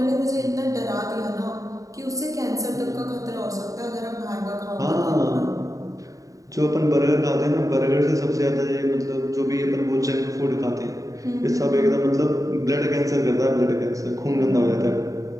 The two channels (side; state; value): left; late; 0.16 ms